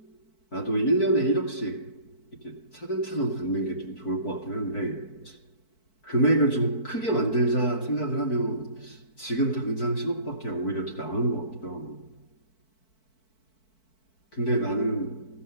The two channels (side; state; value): right; late; 4.5 ms